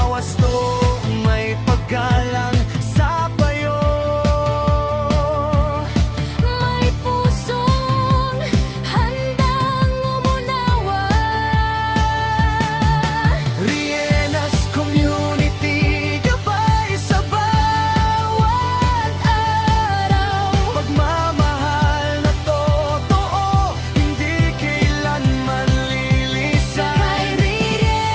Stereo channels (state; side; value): identical; both; correlation 1.00